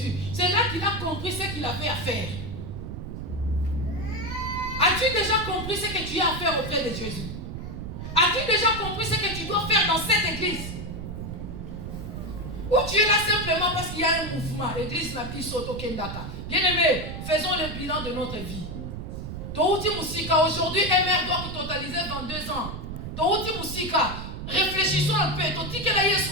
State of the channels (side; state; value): right; noise; rumble, 7 dB below the sound